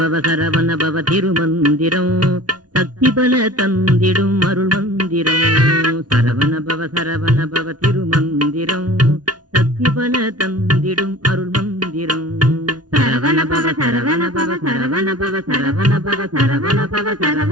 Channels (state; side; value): late; left; 0.69 ms